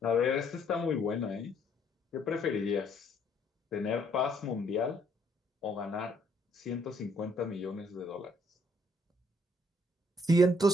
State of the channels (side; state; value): both; normal; correlation 0.67